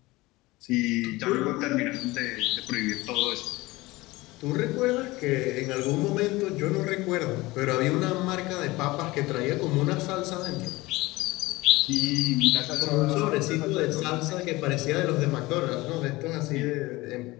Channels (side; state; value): right; quieter; 20.7 dB